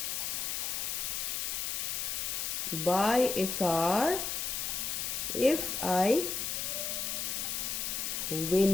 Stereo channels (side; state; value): left; noise; hiss, 1 dB below the sound